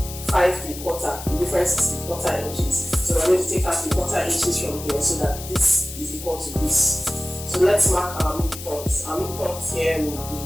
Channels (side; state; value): left; noise; hiss, 12 dB below the sound